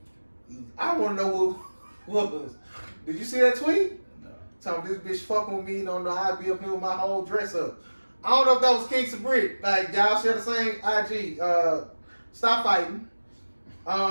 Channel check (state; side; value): inverted; both; correlation -1.00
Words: I want to know what was. Did you see that tweet? No. Telling this bitch fucking with me, don't know how I be up here with my whole dress up. I don't know if that was Kings and Brick. Like, y'all share the same IG. Stop fighting.